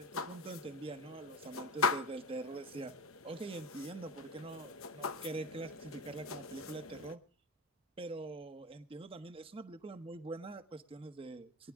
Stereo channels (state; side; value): normal; both; correlation 0.24